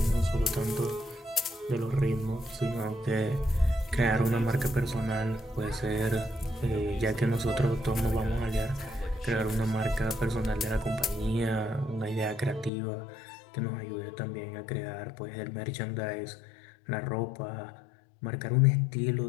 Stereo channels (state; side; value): drops out; right; at 12.7 s